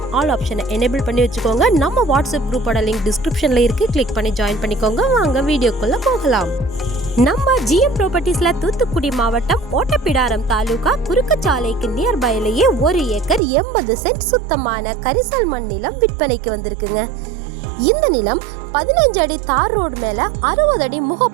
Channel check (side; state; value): left; drops out; at 13.4 s